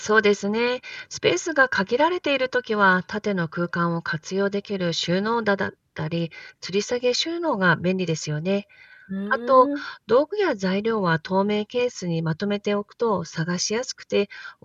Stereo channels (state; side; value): identical; both; correlation 1.00